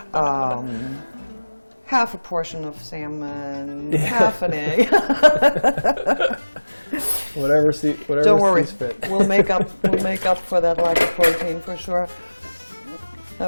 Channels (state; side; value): inverted; both; correlation -1.00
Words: Half a portion of salmon, half an egg. whatever Don't worry, sees fit. we'll make up for that lack of protein for sure.